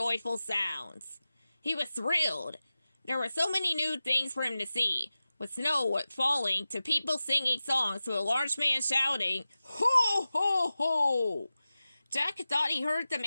sounds. He was thrilled. There were so many new things for him to see, with snow falling to people singing songs to a large man shouting, "Ho, ho, ho!" Jack thought he heard the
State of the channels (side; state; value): both; inverted; correlation -0.95